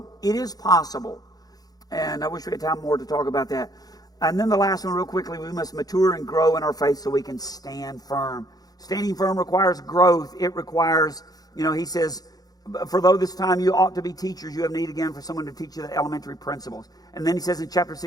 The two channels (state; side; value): late; right; 0.19 ms